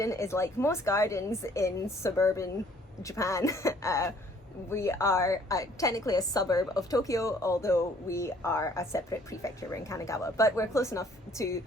is like most gardens in suburban Japan. We are technically a suburb of Tokyo, although we are a separate prefecture. We're in Kanagawa, but we're close enough to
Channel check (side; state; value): both; normal; correlation 0.59